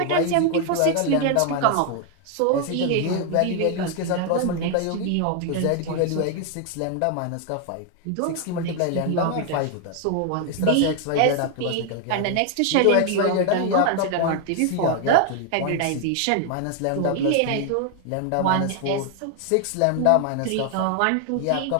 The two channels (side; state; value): both; different; correlation 0.00